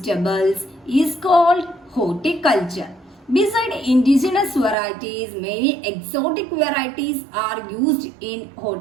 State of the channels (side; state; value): left; drops out; at 4.8 s